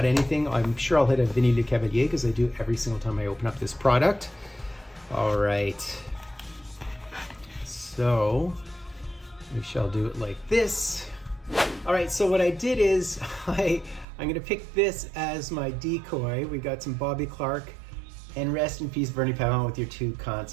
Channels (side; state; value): left; drops out; at 14.1 s